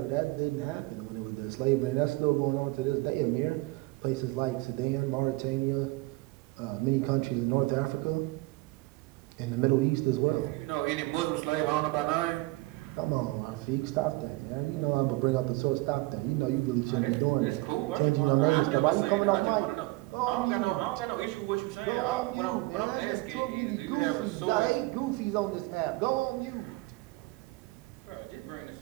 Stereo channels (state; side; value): quieter; left; 22.2 dB